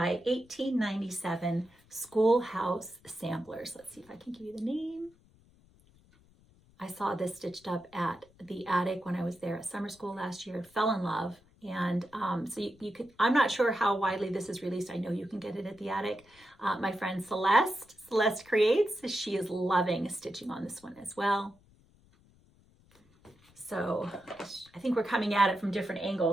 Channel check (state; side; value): noise; left; rumble, 29 dB below the sound